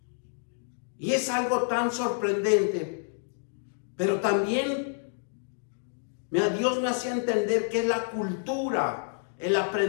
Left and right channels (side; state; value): right; silent; digital silence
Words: Y es algo tan sorprendente, pero también Dios me hacía entender que es la cultura, el